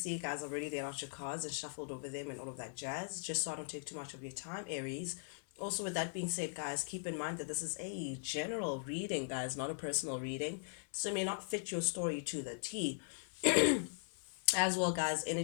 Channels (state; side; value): silent; right; 51 dB below the other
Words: guys, already laid out your cards and shuffled over them and all of that jazz, just so I don't take too much of your time, Aries. Also, with that being said, guys, keep in mind that this is a general reading, guys, not a personal reading. So it may not fit your story to the T. As well, guys,